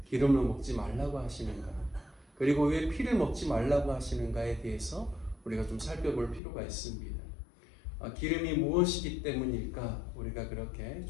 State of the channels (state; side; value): drops out; right; at 6.4 s